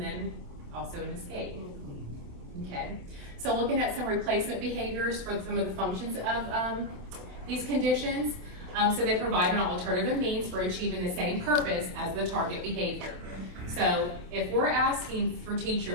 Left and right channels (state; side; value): late; left; 27 ms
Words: then also an escape. Okay. So looking at some replacement behaviors for some of the functions of these conditions. So they provide an alternative means for achieving the same purpose as the target behavior. So if we're asking for